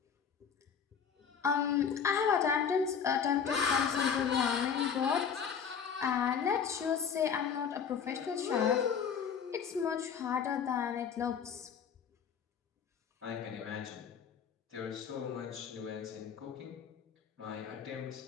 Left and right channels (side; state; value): right; quieter; 7.1 dB